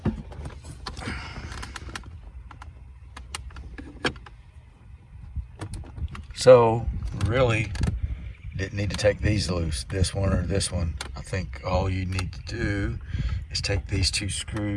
So really didn't need to take these loose, this one or this one. I think all you need to do is take these two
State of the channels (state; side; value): identical; both; correlation 1.00